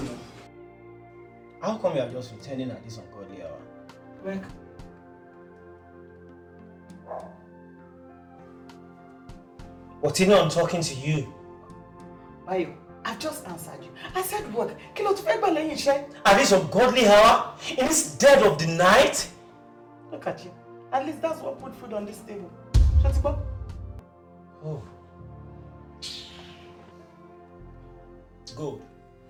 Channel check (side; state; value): both; identical; correlation 1.00